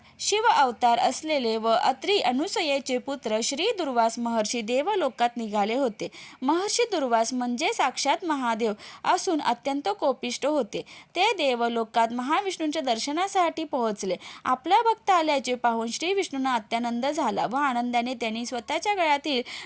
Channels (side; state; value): both; identical; correlation 1.00